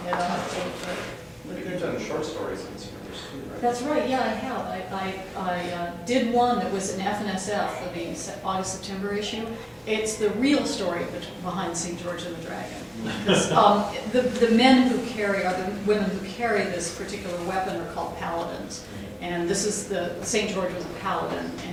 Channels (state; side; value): identical; both; correlation 1.00